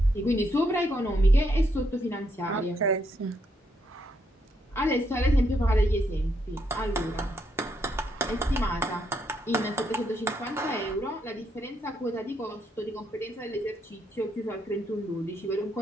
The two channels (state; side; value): normal; both; correlation 0.77